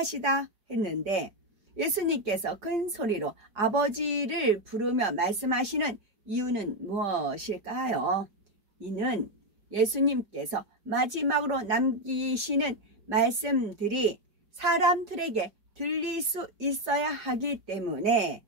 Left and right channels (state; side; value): late; left; 4.9 ms